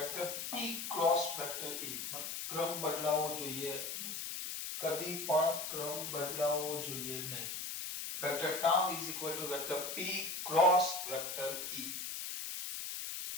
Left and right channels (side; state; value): left; noise; hiss, 5 dB below the sound